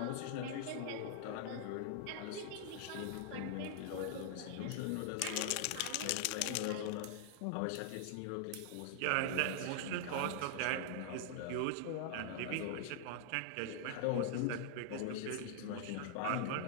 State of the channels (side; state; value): both; different; correlation -0.01